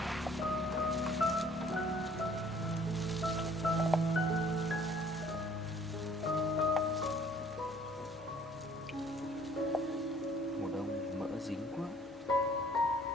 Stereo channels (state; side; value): normal; both; correlation 0.57